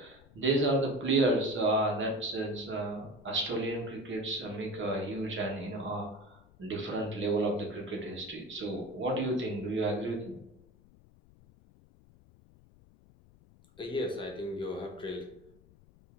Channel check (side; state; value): left; noise; rumble, 25 dB below the sound